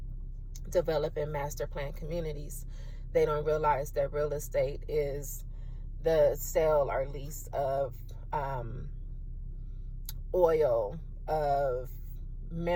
developing master plan communities. They don't realize that real estate is the sale or lease of oil, of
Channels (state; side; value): identical; both; correlation 1.00